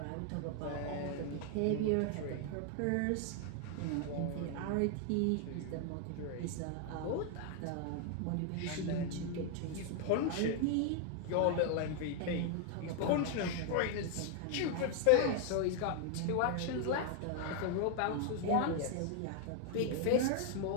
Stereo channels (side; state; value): both; different; correlation 0.00